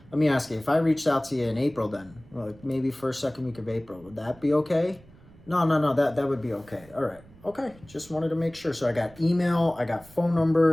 let me ask you, if I reached out to you in April, then like maybe first, second week of April, would that be okay? No, that would be okay. All right, okay, just wanted to make sure. So I got email, I got phone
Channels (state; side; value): noise; right; rumble, 24 dB below the sound